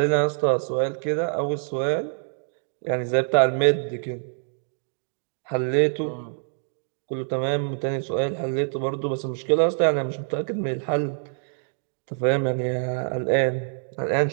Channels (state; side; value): silent; left; digital silence